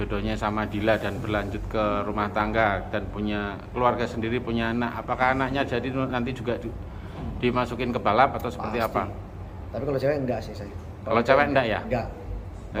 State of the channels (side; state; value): both; identical; correlation 1.00